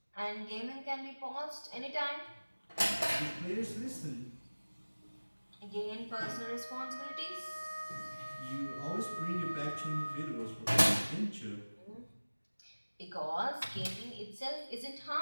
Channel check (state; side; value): inverted; both; correlation -1.00